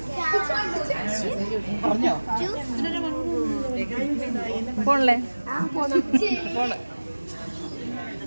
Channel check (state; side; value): inverted; both; correlation -1.00